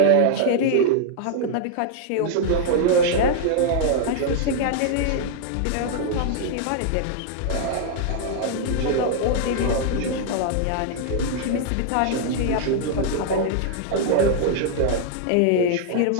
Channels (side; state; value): both; different; correlation -0.01